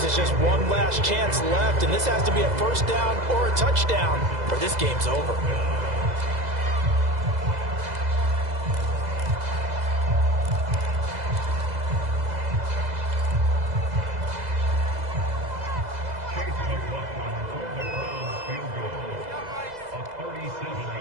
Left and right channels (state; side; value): late; left; 2.0 ms